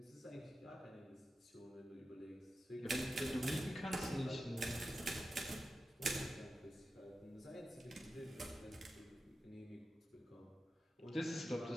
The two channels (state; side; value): normal; both; correlation 0.91